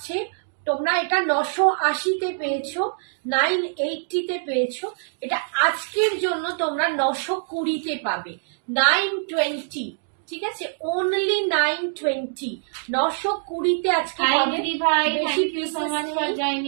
তোমরা এটা 980 তে পেয়েছো, 980 তে পেয়েছো। এটা আজকের জন্য তোমরা 920 তে পাবে, 920, ঠিক আছে, অনলি 920, 920 তে আজকে হাই পাবে। দিদি ভাই, বেশি thank you so much for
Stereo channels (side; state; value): left; silent; digital silence